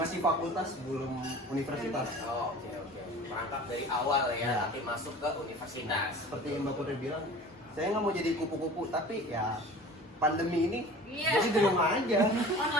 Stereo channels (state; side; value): normal; both; correlation 0.41